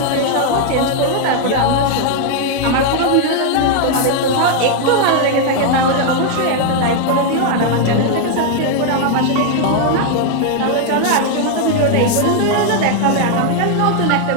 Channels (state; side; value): different; both; correlation 0.00